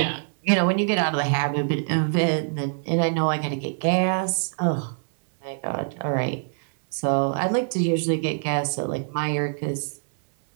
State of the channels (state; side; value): silent; left; 61 dB below the other